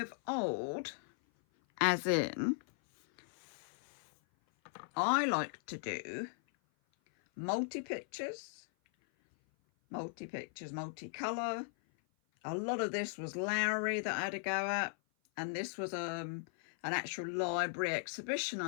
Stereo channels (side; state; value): right; silent; 53 dB below the other